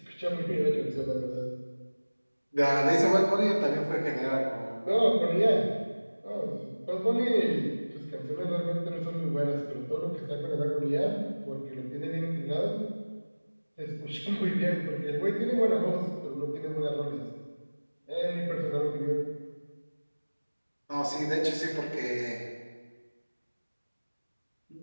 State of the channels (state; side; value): inverted; both; correlation -1.00